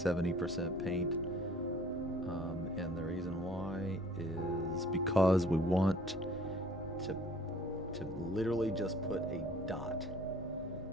paint. And the reason why is because we want to literally just put a dot.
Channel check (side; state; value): both; normal; correlation 0.53